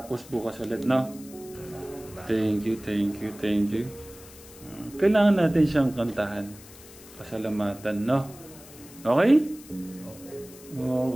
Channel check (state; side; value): noise; left; hiss, 19 dB below the sound